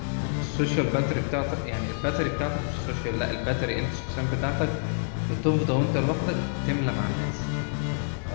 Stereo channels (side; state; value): right; silent; 60 dB below the other